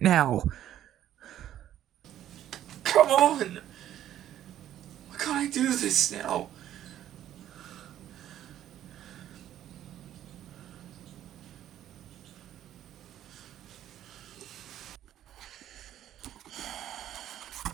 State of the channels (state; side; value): quieter; left; 11.7 dB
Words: now? Come on! Why can't I do this now?